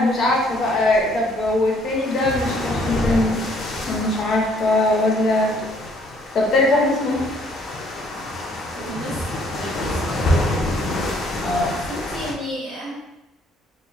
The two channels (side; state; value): both; normal; correlation 0.63